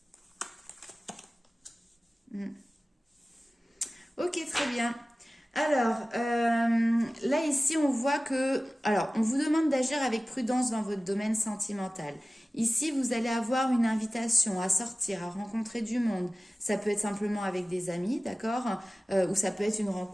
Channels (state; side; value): normal; both; correlation 0.97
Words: Ok, très bien. Alors, là, ici, on voit que... Alors, on vous demande d'agir avec prudence dans votre domaine sentimental. Ici, vous allez avoir une invitation à sortir, à rencontrer du monde. Ça peut être simplement avec des amis, d'accord? Ou ça peut être une